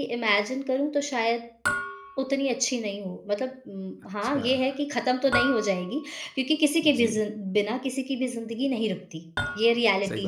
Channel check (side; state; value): both; identical; correlation 1.00